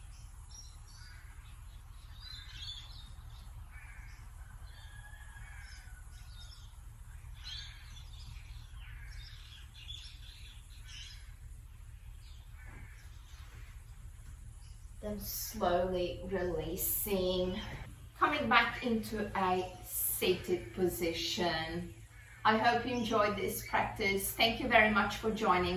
Then slowly releasing, coming back into a seated position. I hope you enjoyed this practice. Thank you very much for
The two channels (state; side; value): identical; both; correlation 1.00